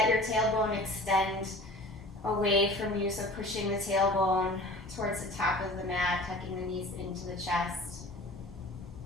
your tailbone extend away from you, so pushing the tailbone towards the top of the mat, tucking the knees into the chest.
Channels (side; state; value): both; normal; correlation 0.42